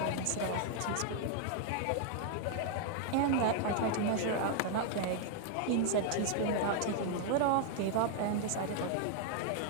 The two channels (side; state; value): both; different; correlation 0.00